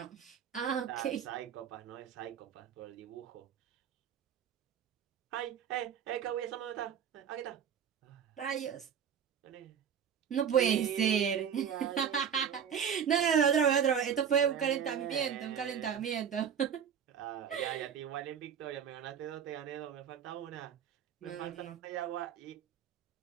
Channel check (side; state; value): left; quieter; 8.0 dB